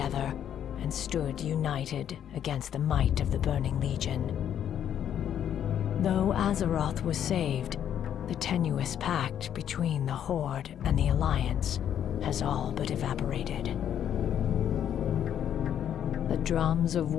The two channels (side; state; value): right; quieter; 9.7 dB